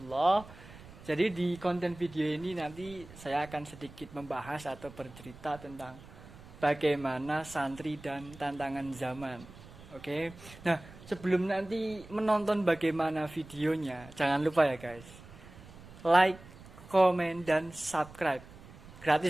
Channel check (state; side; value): noise; right; rumble, 18 dB below the sound